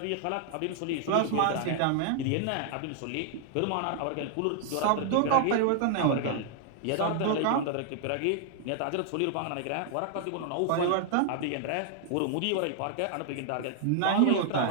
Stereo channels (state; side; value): different; both; correlation 0.00